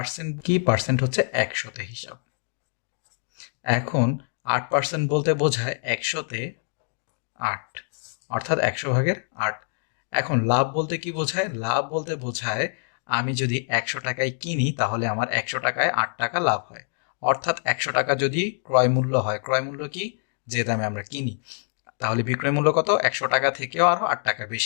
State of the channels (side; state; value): right; silent; digital silence